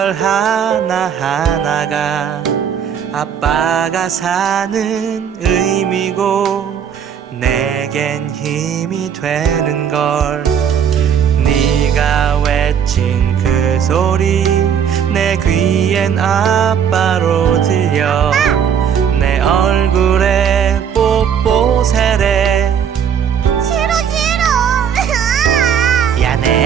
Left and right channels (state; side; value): quieter; left; 8.0 dB